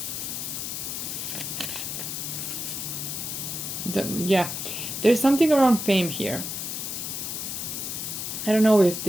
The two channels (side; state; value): left; noise; hiss, 4 dB below the sound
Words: Yeah, there's something around fame here. I don't know if